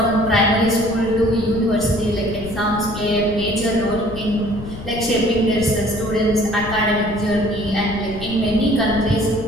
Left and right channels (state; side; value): noise; left; rumble, 13 dB below the sound